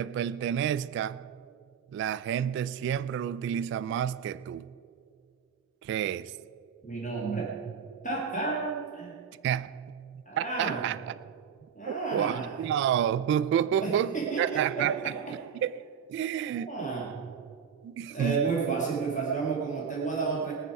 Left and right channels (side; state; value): left; quieter; 7.2 dB